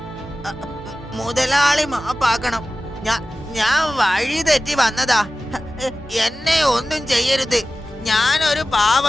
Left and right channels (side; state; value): both; normal; correlation 0.96